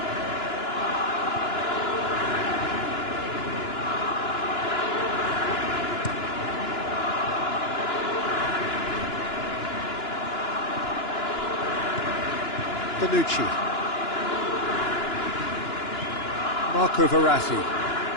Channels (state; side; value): late; right; 2.9 ms